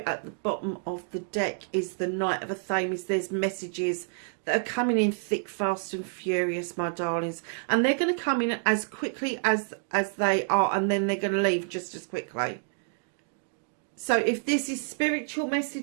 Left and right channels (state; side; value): silent; left; 58 dB below the other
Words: at the bottom of the deck is the Knight of Athames. There's messages that are coming in thick, fast and furious, my darlings. And they're going to come in as quickly as they are, and then they're going to leave just as quickly. So if this is spiritual